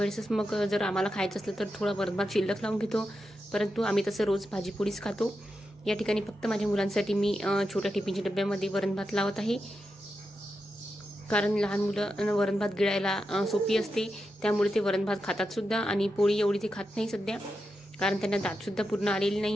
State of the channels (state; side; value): normal; both; correlation 0.88